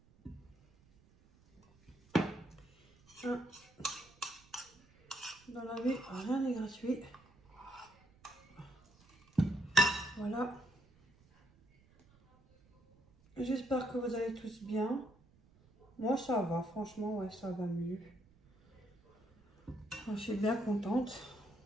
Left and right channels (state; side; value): noise; right; rumble, 29 dB below the sound